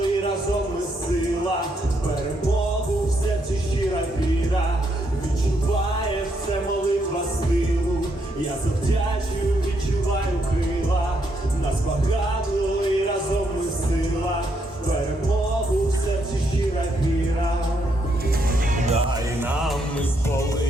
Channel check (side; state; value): both; normal; correlation 0.76